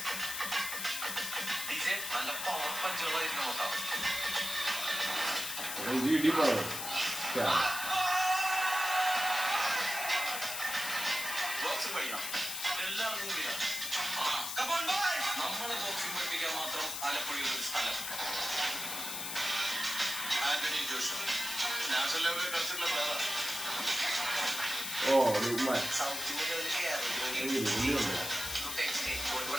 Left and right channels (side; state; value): left; noise; hiss, 4 dB below the sound